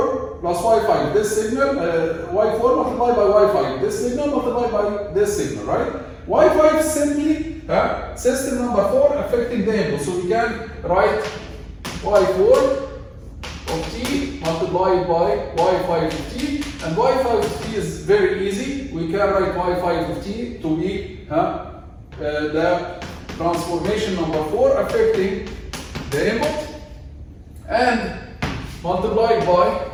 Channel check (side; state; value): both; identical; correlation 1.00